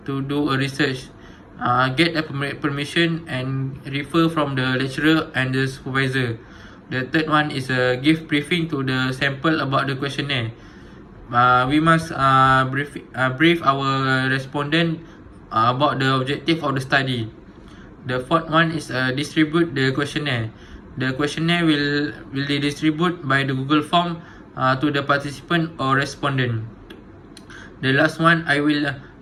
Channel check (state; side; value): identical; both; correlation 1.00